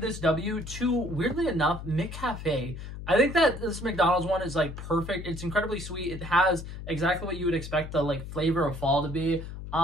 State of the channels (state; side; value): noise; left; hum, 10 dB below the sound